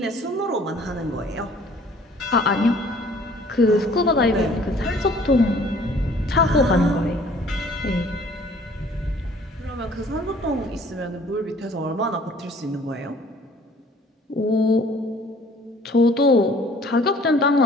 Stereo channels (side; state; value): both; normal; correlation 0.54